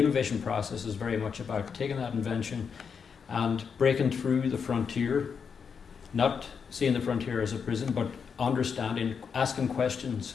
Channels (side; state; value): right; quieter; 6.3 dB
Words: process is very much about taking that invention and breaking through the frontier, not seeing the frontier as a prison, but understanding, asking questions